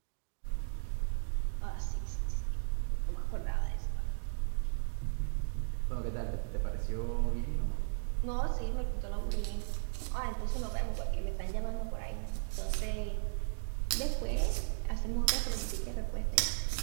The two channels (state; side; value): silent; left; digital silence